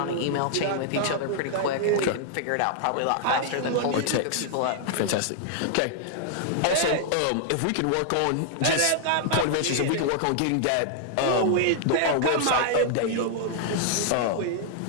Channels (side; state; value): both; different; correlation -0.01